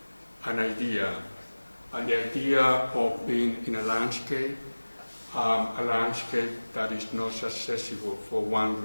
an idea, and the idea of being in a landscape that is not accessible for one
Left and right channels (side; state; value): both; inverted; correlation -1.00